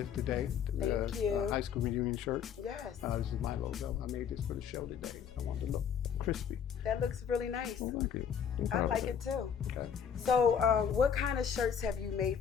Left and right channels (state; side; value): quieter; right; 7.7 dB